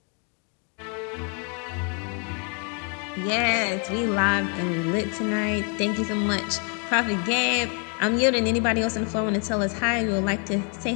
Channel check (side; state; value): right; quieter; 38.7 dB